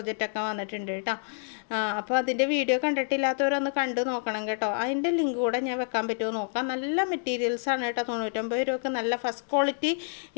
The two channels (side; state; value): right; silent; 59 dB below the other